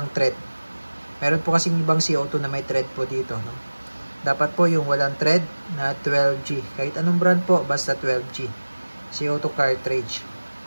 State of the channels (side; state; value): both; inverted; correlation -1.00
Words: thread. Meron po kasing ibang CO2 na may thread po dito, no? Dapat po yung walang thread na 12G. Kahit anong brand po, basta 12G. CO2 cartridge.